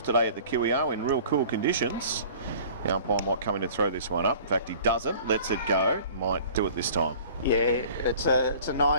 today at the QEO in real cool conditions. The umpire might come in and throw this one up. In fact, he doesn't, lets it go. Might do it this time. Yeah, it's a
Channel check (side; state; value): both; inverted; correlation -0.47